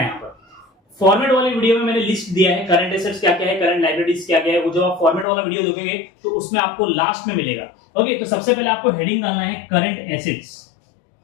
यहां पर फॉर्मेट वाले वीडियो में मैंने लिस्ट दिया है करंट एसेट्स क्या क्या है, करंट लायबिलिटीज क्या क्या है। वो जो आप फॉर्मेट वाला वीडियो देखोगे तो उसमें आपको लास्ट में मिलेगा। ओके, तो सबसे पहले आपको हेडिंग डालना है करंट एसेट्स।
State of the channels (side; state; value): right; drops out; at 5.2 s